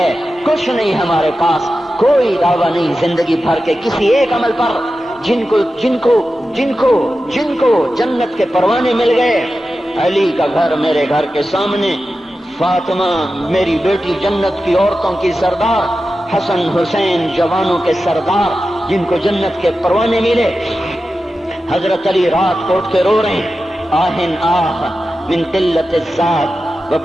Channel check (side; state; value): both; normal; correlation 0.92